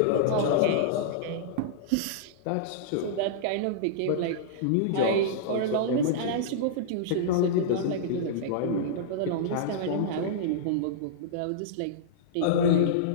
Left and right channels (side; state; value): both; different; correlation -0.03